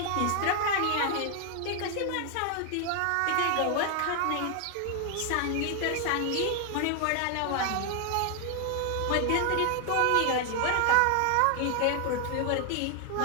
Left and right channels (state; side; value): different; both; correlation 0.00